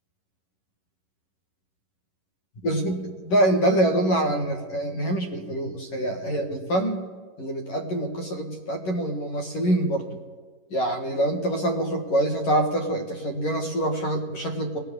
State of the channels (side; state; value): right; late; 11 ms